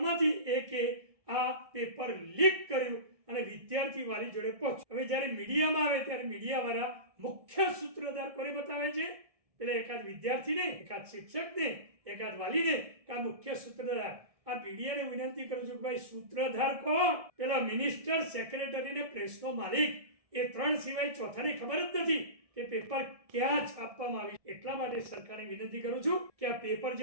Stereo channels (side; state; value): left; late; 1.7 ms